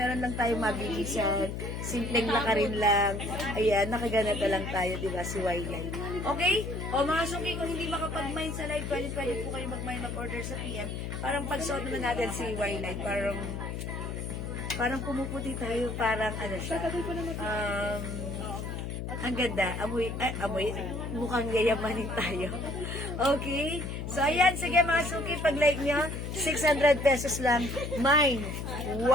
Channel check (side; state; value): left; noise; hum, 5 dB below the sound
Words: lang tayo mabilisan, simpleng lakarin lang. Ayan, nakaganata lang tayo, di ba, si Wildlife. Okay? O mga suki, kung hindi makapag-mine sa live, pwede po kayo mag-mine, mag-order sa PM. Parang pag-suot naman natin si Wildlife, parang pumuputi tayo, parang ano siya. Ang ganda. Amoy, mukhang yayamanin tayo. Okay? So, ayan. Sige, mga suki, pag-like nyo, 600 pesos lang. Mine,